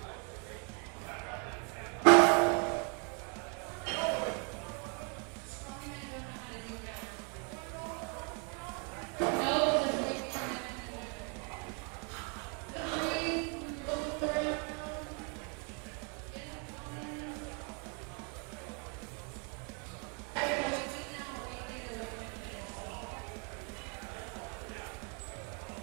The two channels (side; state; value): left; quieter; 37.1 dB